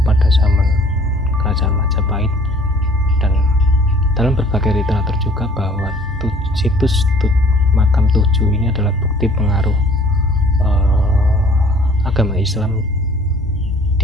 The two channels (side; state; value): both; normal; correlation 0.54